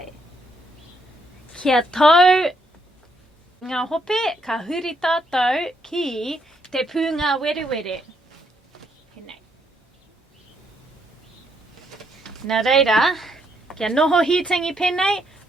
Kia tau ngā hope, ka huri tātou ki te pūngawerewere. Pēnei. Nā reira, kia noho hitangi pēnei,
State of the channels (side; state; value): both; normal; correlation 0.74